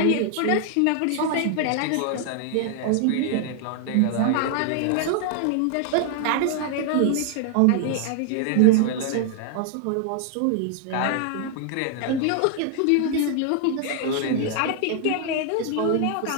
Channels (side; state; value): both; different; correlation 0.00